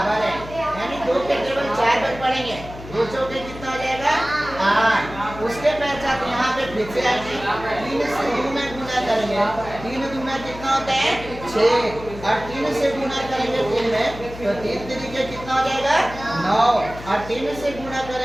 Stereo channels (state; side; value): noise; left; hum, 14 dB below the sound